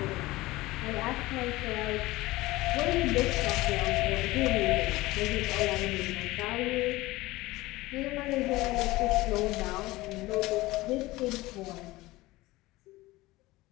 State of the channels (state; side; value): quieter; right; 19.3 dB